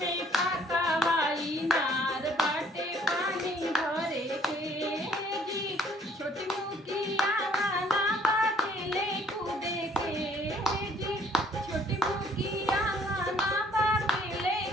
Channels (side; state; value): both; normal; correlation 0.61